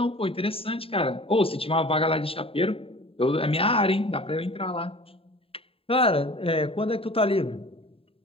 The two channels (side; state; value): right; late; 0.27 ms